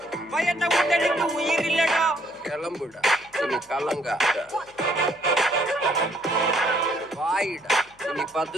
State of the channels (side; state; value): left; noise; hum, 30 dB below the sound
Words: பயந்த உடலுக்கு உயிர் இல்லடா. கிளம்புடா இனி கலங்காத, வாயிடா இனி